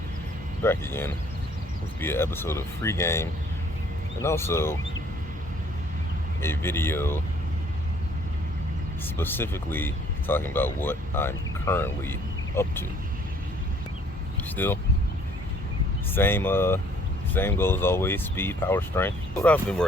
back again. This will be an episode of Free Game and also a video specifically talking about what I'm currently up to. Still, same goal as always, speed, power, strength. What I've been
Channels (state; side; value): normal; both; correlation 0.59